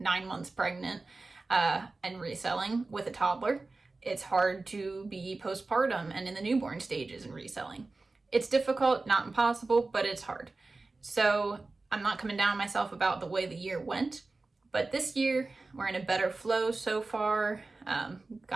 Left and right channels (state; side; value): quieter; left; 3.5 dB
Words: months pregnant and reselling with a toddler. It's hard to be postpartum and in the newborn stages and reselling. It's difficult, not impossible, but it's hard. So I'm not coming down on myself about the way the year went. But this year, we're in a better flow so far.